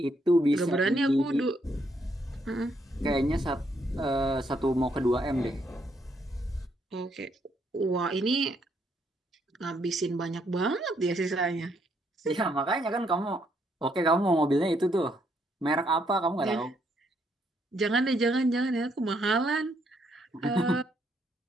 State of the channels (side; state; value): both; normal; correlation 0.73